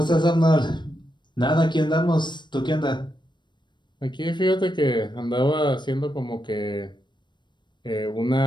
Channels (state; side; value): late; right; 0.22 ms